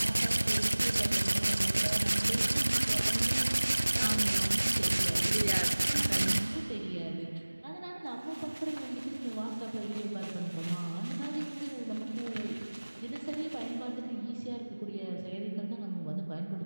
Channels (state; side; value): inverted; both; correlation -1.00